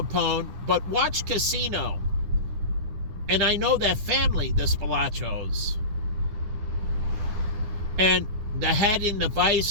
but watch Casino. And I know that family, the Spilachos. And the head in the vice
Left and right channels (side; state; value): left; late; 9.9 ms